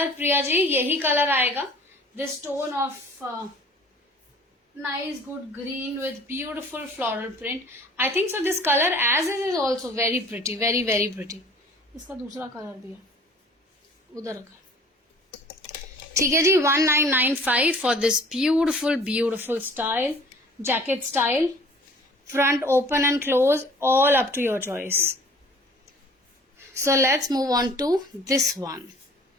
प्रिया जी यही कलर आएगा. This tone of nice good green with beautiful floral print. I think so this color as is also very pretty, very very pretty. इसका दूसरा colour भी है उधर का. ठीक है जी, 1995 for this beautiful beautiful style, jacket style, front open and close, all up to your choice. So let's move on to this one.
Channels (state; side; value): normal; both; correlation 0.50